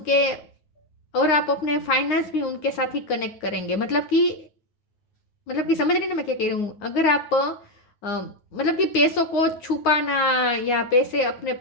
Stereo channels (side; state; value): right; late; 9.7 ms